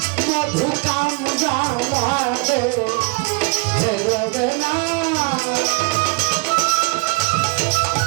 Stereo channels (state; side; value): quieter; left; 29.7 dB